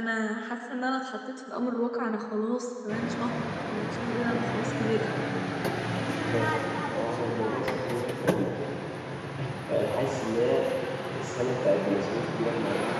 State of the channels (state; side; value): identical; both; correlation 1.00